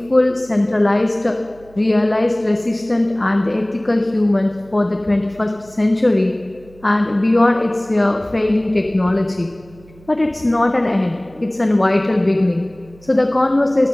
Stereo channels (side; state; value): right; noise; hum, 25 dB below the sound